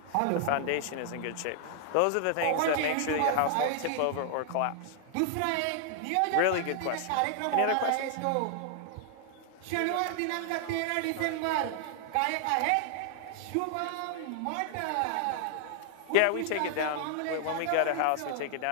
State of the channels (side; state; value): both; different; correlation 0.00